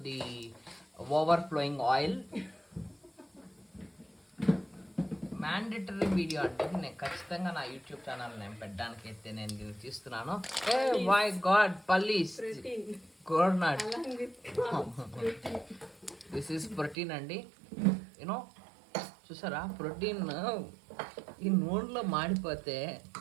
the overflowing oil. Mandatory video అంటే నేను ఖచ్చితంగా నా యూట్యూబ్ ఛానల్ నేను పెట్టడానికి అయితే నేను దీన్ని తీస్తున్నాను. ఏ మై గాడ్, పల్లీస్, కోర్నట్, దిస్ ఈస్ ప్రోటీన్ అండి. యూనో, చూసారా ప్రోటీన్ ఈ నూనెలో మాడిపోతే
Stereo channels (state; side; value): drops out; left; at 16.9 s